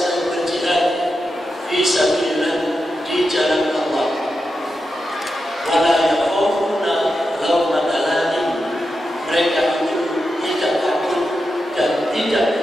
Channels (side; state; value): both; normal; correlation 0.89